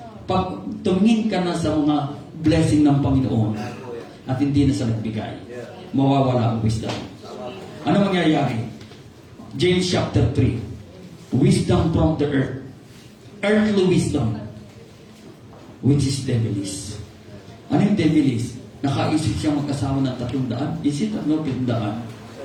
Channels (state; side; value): identical; both; correlation 1.00